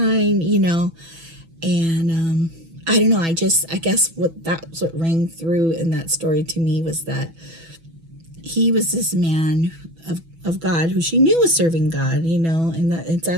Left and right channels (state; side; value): late; left; 6.1 ms